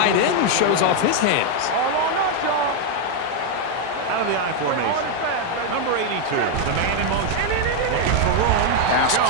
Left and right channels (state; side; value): different; both; correlation 0.01